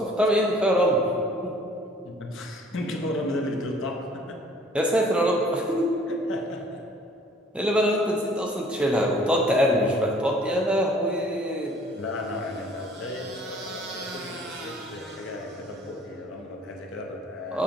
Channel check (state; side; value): normal; both; correlation 0.55